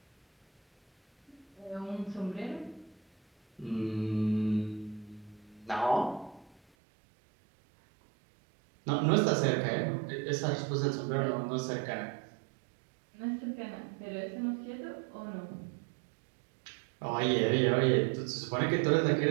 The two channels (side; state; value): left; drops out; at 6.6 s